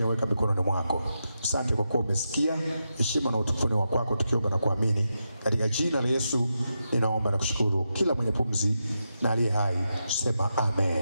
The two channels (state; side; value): inverted; both; correlation -0.87